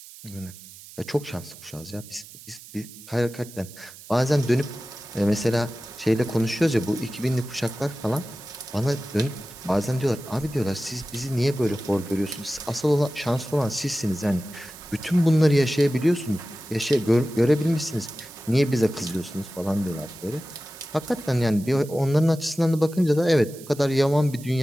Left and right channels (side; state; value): right; noise; hiss, 18 dB below the sound